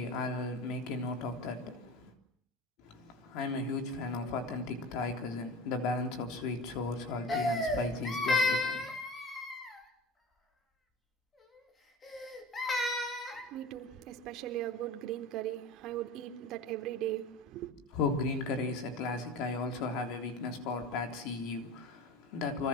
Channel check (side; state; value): both; normal; correlation 0.34